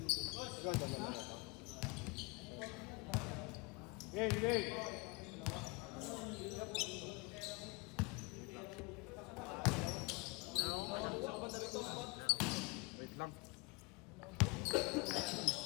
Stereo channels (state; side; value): quieter; right; 26.6 dB